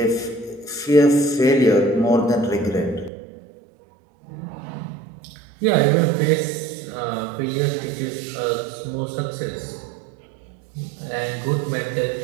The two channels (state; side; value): drops out; left; at 3.1 s